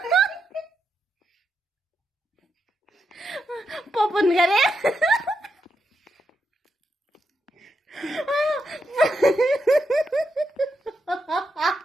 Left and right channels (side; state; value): both; normal; correlation 0.84